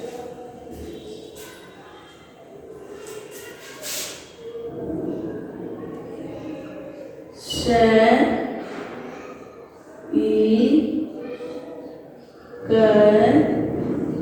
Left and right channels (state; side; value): identical; both; correlation 1.00